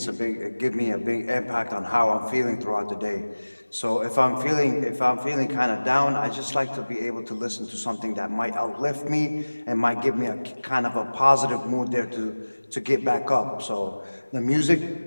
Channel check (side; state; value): both; inverted; correlation -1.00